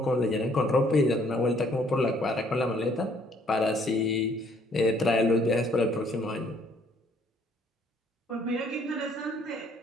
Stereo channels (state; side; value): normal; both; correlation 0.63